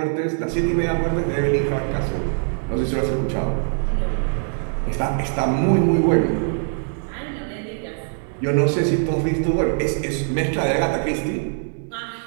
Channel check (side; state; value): left; silent; digital silence